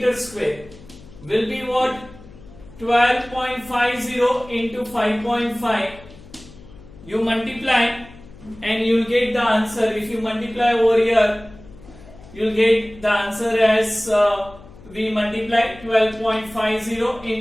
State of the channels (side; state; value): left; noise; hum, 20 dB below the sound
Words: square will be what? 12.50 into 5.5. You multiply and you will get the answer. If you multiply over here, you will get the answer as we multiply 12.50